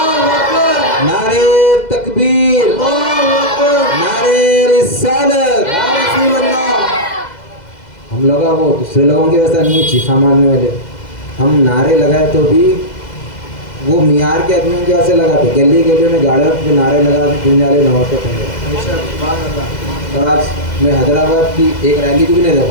نعرے تکبیر, نعرے رسالت. ہم لوگ وہ دوسرے لوگوں کے ویسا نہیں چیخا مارنے والے, ہم نعرے لگائے تو بھی وہ معیار کے آدمیوں کے ویسے لگاتے, گلی گلی میں گاڑیوں پہ نعرے لگاتے, دنیالے نہ ہوتے تھے. اور آج میں حیدرآباد کی ایک ریلی کو بھی نہیں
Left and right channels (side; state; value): right; late; 2.0 ms